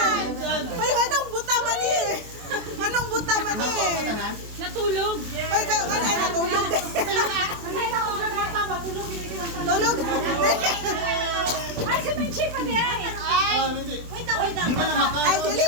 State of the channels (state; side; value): late; left; 24 ms